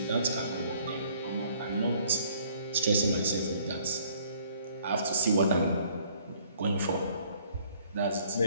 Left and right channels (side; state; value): both; inverted; correlation -0.61